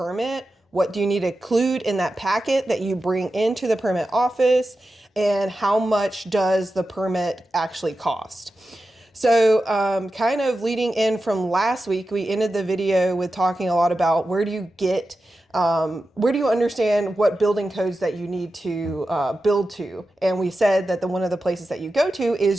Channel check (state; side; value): normal; both; correlation 0.92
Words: What do you need to include in that packet that you bring into the permit office? And how much does the permit actually cost? So kind of leading in from last week, we ended the video with talking a lot about where do you understand what building codes that you need to build to. And we said that one of the places that you go to